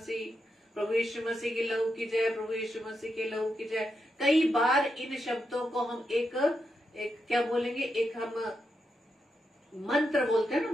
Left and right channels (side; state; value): both; normal; correlation 0.85